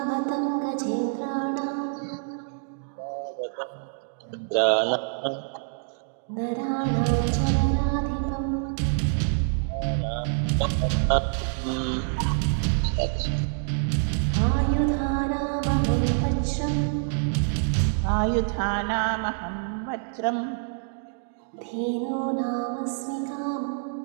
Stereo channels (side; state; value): left; silent; digital silence